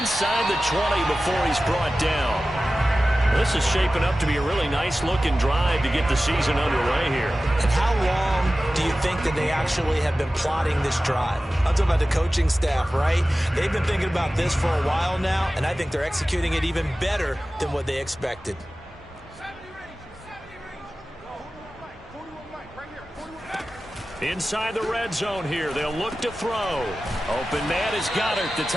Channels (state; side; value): normal; both; correlation 0.95